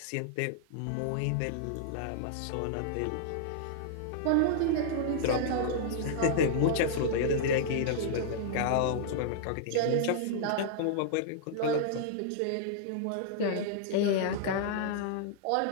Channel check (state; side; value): different; both; correlation -0.01